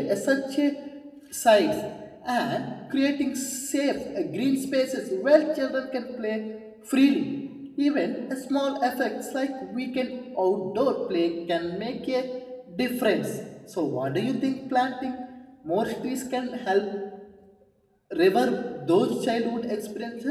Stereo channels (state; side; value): identical; both; correlation 1.00